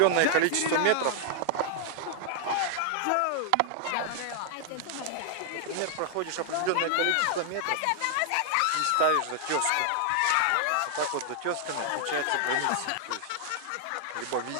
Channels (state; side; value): different; both; correlation 0.00